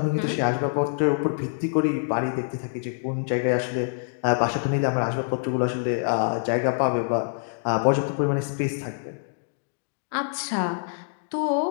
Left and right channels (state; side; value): silent; right; digital silence